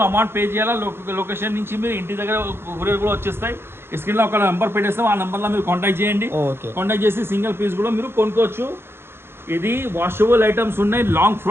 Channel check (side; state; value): left; late; 0.11 ms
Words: అమౌంట్ పే చేయాలా. లొకేషన్ నుంచి మీరు ఇంటి దగ్గర కొరియర్ కూడా వచ్చేస్తాయి. స్క్రీన్ లో ఒక నెంబర్ పెట్టేస్తాం, ఆ నెంబర్లో మీరు కాంటాక్ట్ చేయండి. కాంటాక్ట్ చేసి సింగిల్ పీస్ కూడా మీరు కొనుక్కోవచ్చు. ఇది వాషబుల్ ఐటమ్స్ ఉన్నాయి, లాంగ్